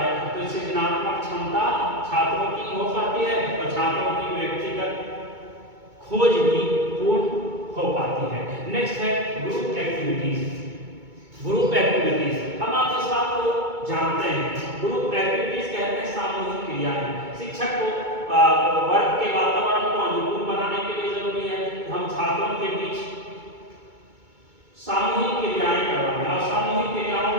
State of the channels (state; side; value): late; left; 2.2 ms